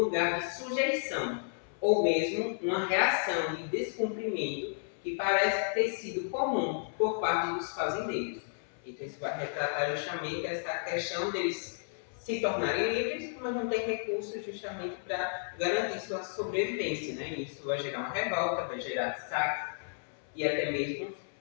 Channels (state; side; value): silent; right; 56 dB below the other